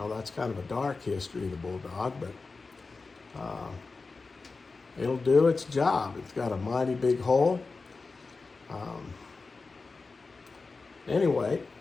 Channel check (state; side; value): quieter; right; 4.0 dB